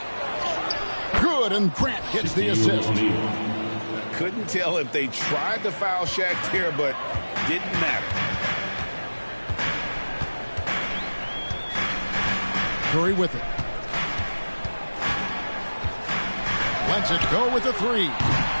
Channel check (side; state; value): both; inverted; correlation -1.00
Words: Good, and Grant gets the assist. Couldn't tell if they tried to foul Shaq there, but didn't matter. Curry with it. Lets it go with the 3.